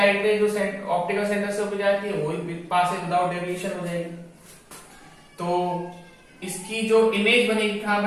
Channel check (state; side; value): identical; both; correlation 1.00